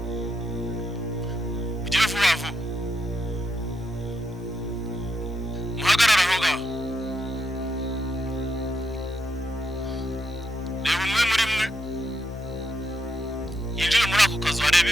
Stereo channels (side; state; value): both; normal; correlation 0.82